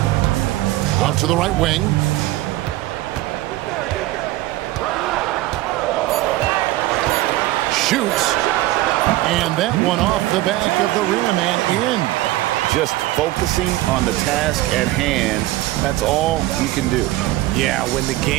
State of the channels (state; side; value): quieter; left; 16.9 dB